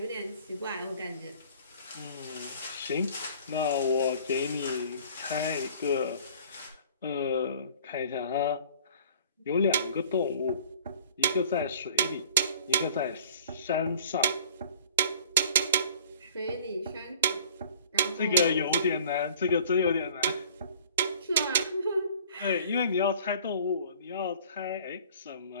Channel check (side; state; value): both; inverted; correlation -0.50